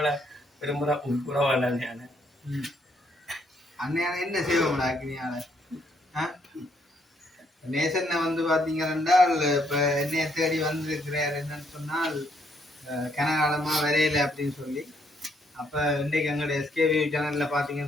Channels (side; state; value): both; normal; correlation 0.71